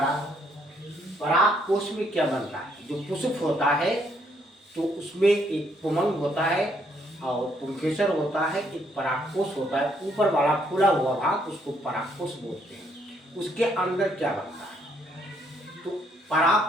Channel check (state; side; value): normal; both; correlation 0.70